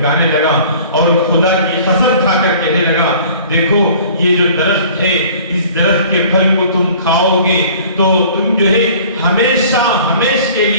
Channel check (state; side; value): inverted; both; correlation -0.49